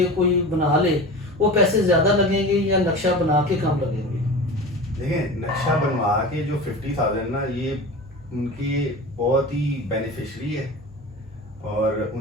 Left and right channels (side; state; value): both; normal; correlation 0.32